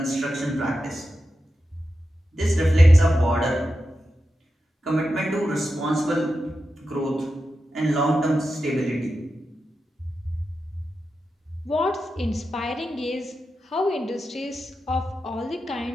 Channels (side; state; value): both; normal; correlation 0.90